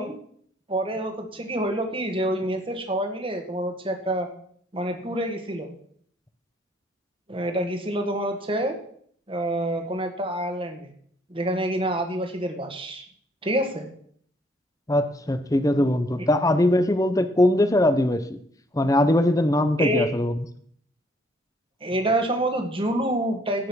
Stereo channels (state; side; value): normal; both; correlation 0.64